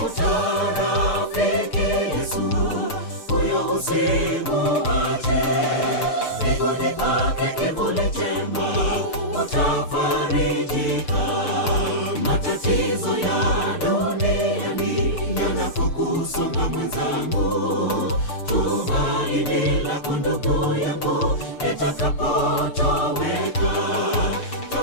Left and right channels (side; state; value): right; late; 6.7 ms